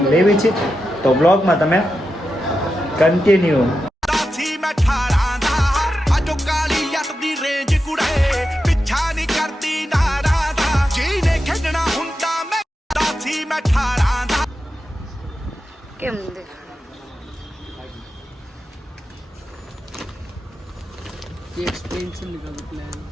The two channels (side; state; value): both; normal; correlation 0.89